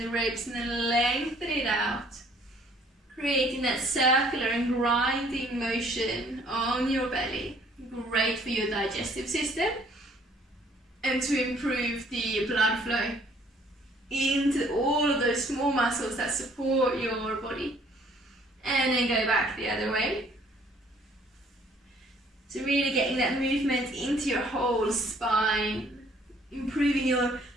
ribs and then lengthen it out. Creating that circular and grinding motion on your belly. Great for your digestive system and to improve the blood flow into all of those small muscles that support your body. and then go back the other way. So really getting that movement into your whole spine, improving your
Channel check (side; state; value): both; normal; correlation 0.60